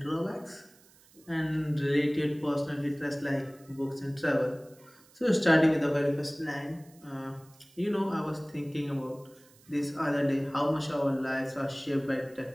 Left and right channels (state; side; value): noise; right; hiss, 27 dB below the sound